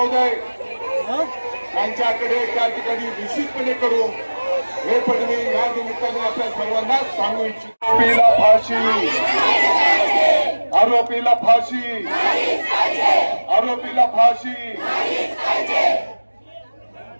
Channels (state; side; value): inverted; both; correlation -1.00